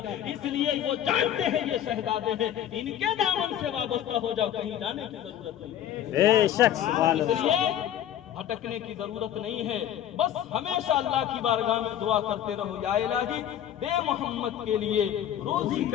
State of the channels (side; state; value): right; quieter; 10.7 dB